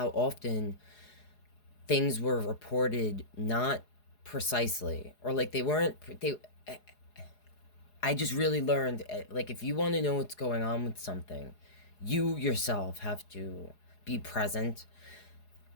often things were reported not precisely, or like I just really learned, like, if you want to know what's going on with something, you yourself have to be present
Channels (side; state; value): right; late; 4.8 ms